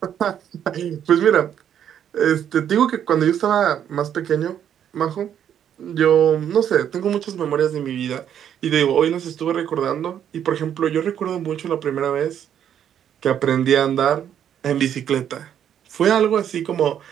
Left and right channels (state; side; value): quieter; left; 9.5 dB